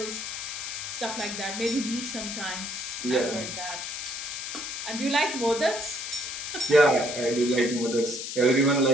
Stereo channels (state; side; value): noise; left; hiss, 6 dB below the sound